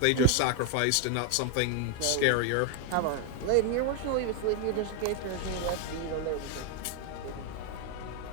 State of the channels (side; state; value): both; different; correlation 0.00